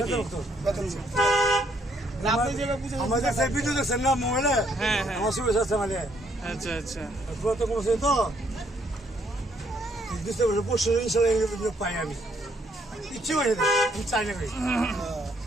বেতন না আপনি যে বুঝেছেন আমাদের সেই ভিডিও দেখছেন না মোবাইলে হ্যাঁ হ্যাঁ আমার সুবিধা আছে মানে আচ্ছা আচ্ছা কত কমছে তো বুঝতে পারছি পরশু ইনশাল্লাহ পাই আমি ইচ্ছে হয়ে আমি চাই না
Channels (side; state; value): both; normal; correlation 0.69